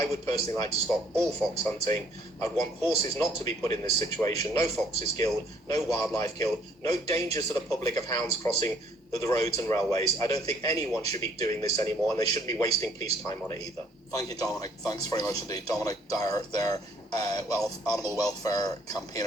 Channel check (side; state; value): both; normal; correlation 0.62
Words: would personally like to stop all fox hunting. I'd want horses not to be put in this situation. No foxes killed, no wildlife killed, no dangers to the public of hounds crossing the roads and railways. I don't think anyone should be doing this anymore, and they shouldn't be wasting police time on it either. Thank you, Dominic. Thanks very much indeed. Dominic Dyer there, animal welfare